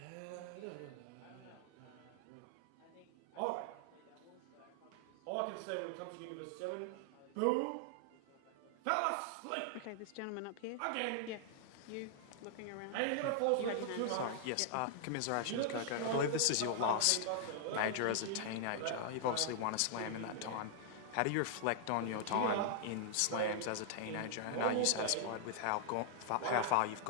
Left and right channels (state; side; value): different; both; correlation -0.01